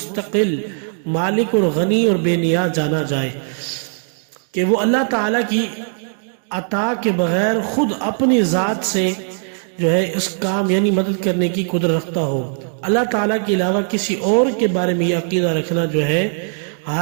مالک اور غنی اور بے نیاز جانا جائے، کہ وہ اللہ تعالیٰ کی عطا کے بغیر خود اپنی ذات سے جو ہے اس کام یعنی مدد کرنے کی قدرت رکھتا ہو۔ اللہ تعالیٰ کے علاوہ کسی اور کے بارے میں یہ عقیدہ رکھنا جو ہے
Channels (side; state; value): left; silent; 65 dB below the other